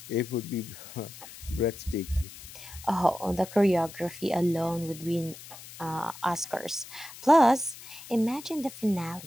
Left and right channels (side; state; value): left; noise; hiss, 16 dB below the sound